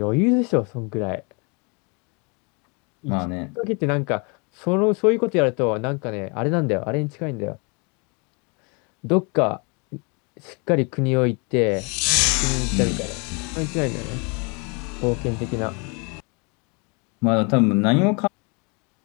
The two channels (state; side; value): quieter; right; 32.5 dB